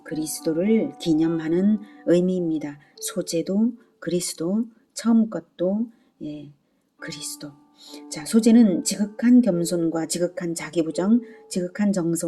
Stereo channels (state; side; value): identical; both; correlation 1.00